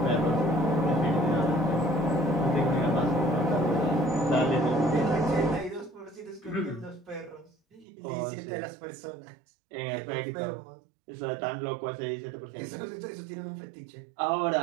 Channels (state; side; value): drops out; left; at 7.9 s